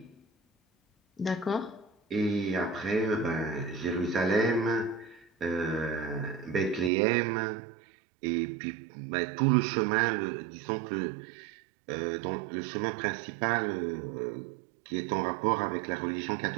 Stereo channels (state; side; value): drops out; left; at 6.9 s